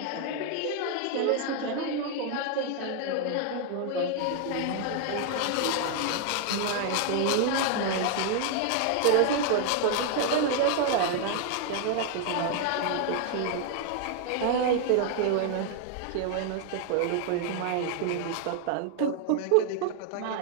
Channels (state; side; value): different; both; correlation 0.00